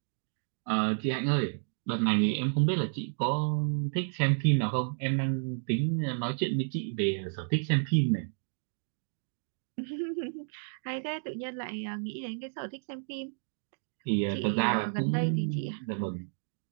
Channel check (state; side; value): silent; left; digital silence